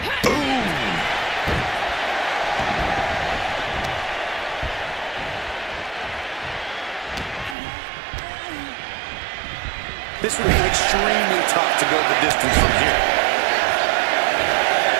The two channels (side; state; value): left; drops out; at 7.6 s